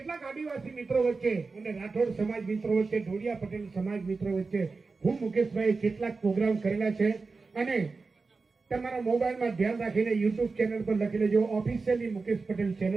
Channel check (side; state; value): left; quieter; 4.2 dB